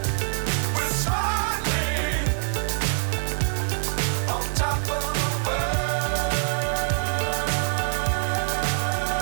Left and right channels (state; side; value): silent; left; 62 dB below the other